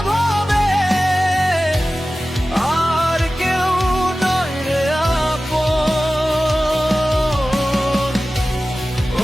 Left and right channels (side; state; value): both; normal; correlation 0.96